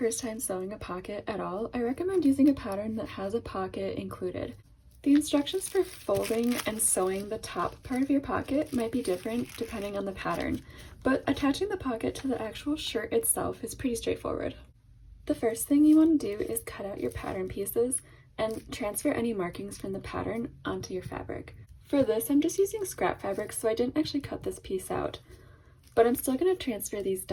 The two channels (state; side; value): identical; both; correlation 1.00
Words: time sewing a pocket at all, I recommend using a pattern that has a pocket included. The instructions for folding and sewing the top part of your pocket might be different depending on the pattern, but attaching the pocket to the actual shirt itself is pretty straightforward. The first thing you want to do is cut out your pattern pieces and transfer any markings from the pattern onto your fabric. For this, I'm just using scrap fabric, so I didn't actually cut this piece out, but I'm still going to transfer these